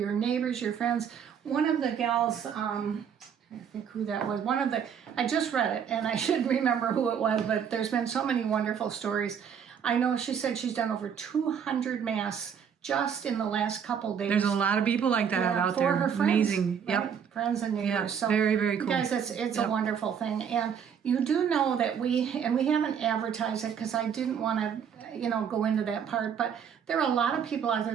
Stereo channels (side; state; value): left; quieter; 7.7 dB